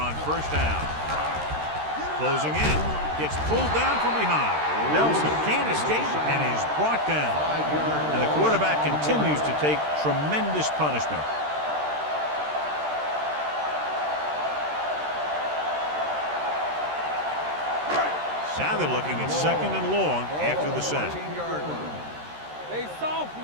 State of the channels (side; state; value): left; late; 13 ms